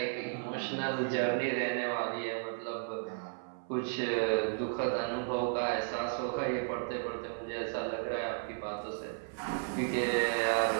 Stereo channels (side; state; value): left; silent; 55 dB below the other